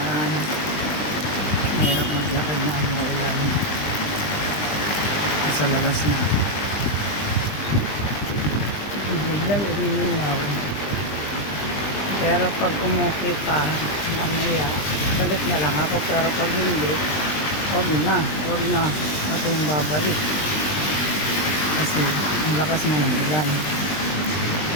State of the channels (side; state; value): right; late; 20 ms